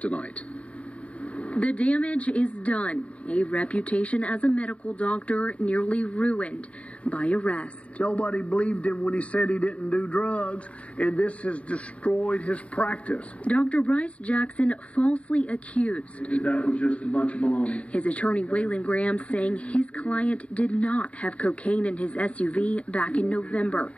The damage is done. A reputation as a medical doctor nearly ruined by arrest. Nobody believed him when he said he didn't do drugs, and this has destroyed his practice. Dr. Bryce Jackson falsely accused. That was just a bunch of baloney. His attorney Waylon Graham saying his client did not have cocaine in his SUV back in November.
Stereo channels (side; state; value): right; late; 0.064 ms